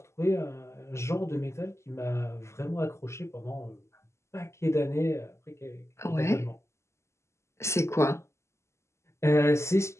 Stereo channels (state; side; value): late; right; 0.13 ms